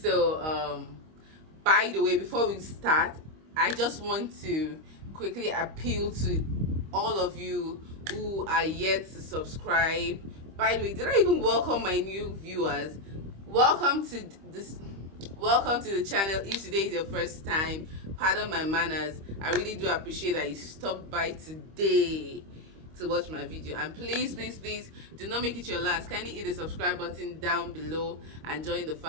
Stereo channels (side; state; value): left; late; 25 ms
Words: by the way, before we start, I just want to quickly appeal to all of you who are yet to subscribe. By the way, did I even welcome my new viewers? Welcome to the channel. If today is your first time, pardon my manners. I really do appreciate that you stopped by today to watch my video, and please do not make it your last. Kindly hit the subscribe button down below and join the